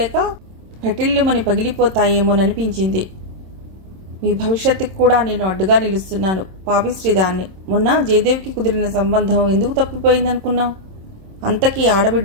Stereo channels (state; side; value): late; left; 27 ms